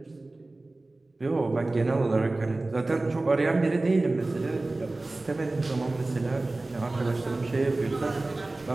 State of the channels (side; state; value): left; quieter; 3.0 dB